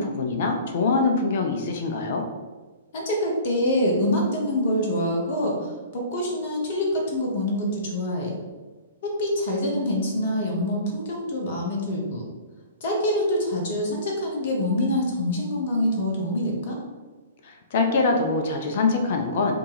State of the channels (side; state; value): both; inverted; correlation -0.44